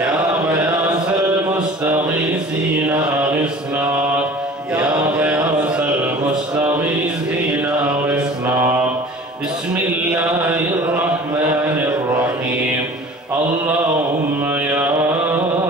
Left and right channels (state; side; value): normal; both; correlation 0.43